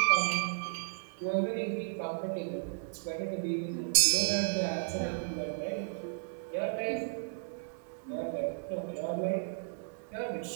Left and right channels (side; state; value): left; silent; digital silence